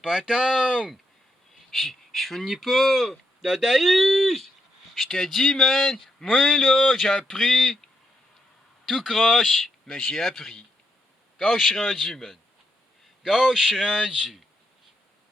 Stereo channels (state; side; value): normal; both; correlation 0.80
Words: attendre. Je finis pas. Dadaïs! Je te dis, man. Moi, là, j'ai appris. Tout croche. Mais j'ai appris. Quand je suis rendu, man. Quand je suis rendu.